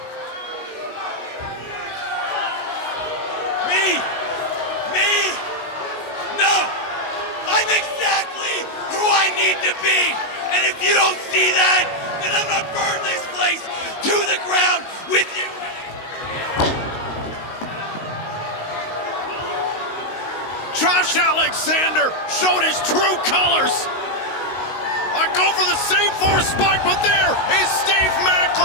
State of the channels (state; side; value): late; right; 19 ms